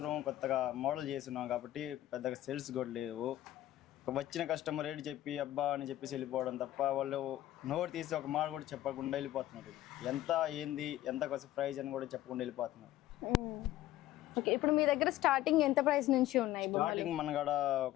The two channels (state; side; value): quieter; right; 14.5 dB